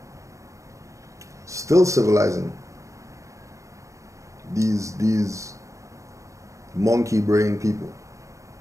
Still civilizing these monkey brain people.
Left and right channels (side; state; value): left; late; 0.15 ms